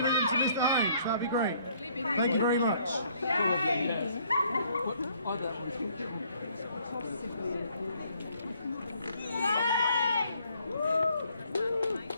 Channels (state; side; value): inverted; both; correlation -0.64